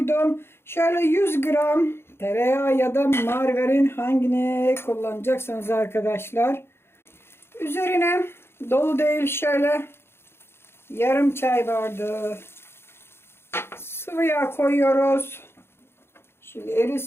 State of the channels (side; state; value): right; late; 0.12 ms